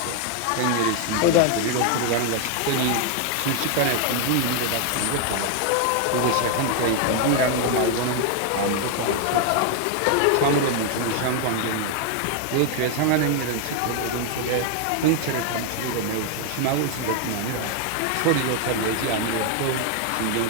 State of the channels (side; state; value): both; different; correlation 0.00